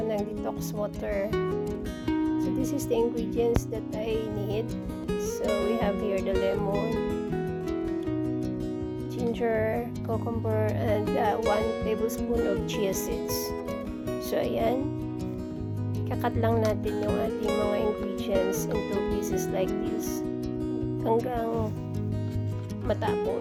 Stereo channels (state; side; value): identical; both; correlation 1.00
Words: ng detox water. So this is the ingredients that I need. So we have here the lemon, ginger, cucumber, and 1 tablespoon of chia seeds. So ayan, kakat lang natin yung ating mga ingredients into pieces like this hanggang